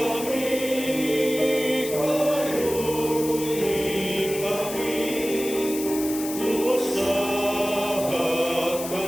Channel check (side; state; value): left; noise; hiss, 9 dB below the sound